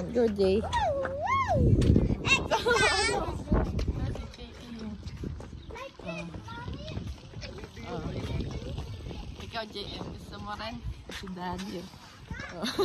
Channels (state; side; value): identical; both; correlation 1.00